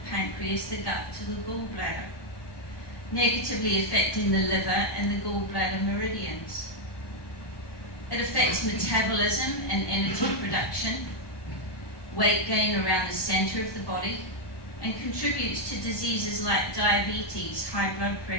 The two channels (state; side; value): late; right; 1.2 ms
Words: pancreas, the gut to the gallbladder, negatively affecting the liver and the gallbladder meridians. It affects metabolism and energy production, weight gain around the center of the body, and contributes to diseases like diabetes, high blood